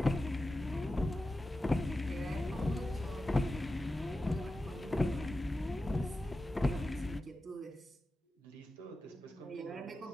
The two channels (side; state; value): both; normal; correlation 0.93